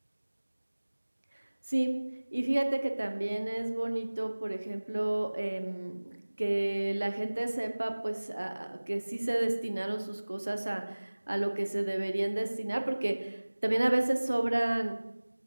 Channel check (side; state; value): both; inverted; correlation -1.00